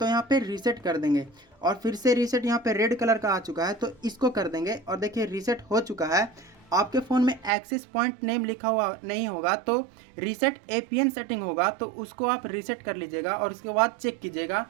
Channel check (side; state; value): left; drops out; at 7.5 s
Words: यहाँ पे रीसेट कर देंगे। और फिर से रीसेट यहाँ पे रेड कलर का आ चुका है तो इसको कर देंगे। और देखिए रीसेट हो चुका है। आपके फ़ोन में एक्सिस पॉइंट नेम लिखा हुआ नहीं होगा तो रीसेट APN सेटिंग होगा, तो उसको आप रीसेट कर लीजिएगा और उसके बाद चेक कीजिएगा।